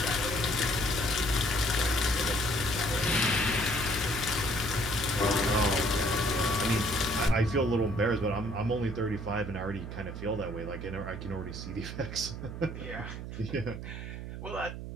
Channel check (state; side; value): noise; right; hum, 8 dB below the sound